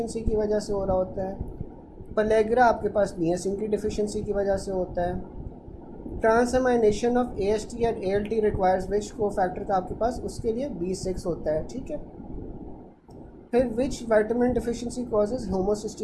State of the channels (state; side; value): identical; both; correlation 1.00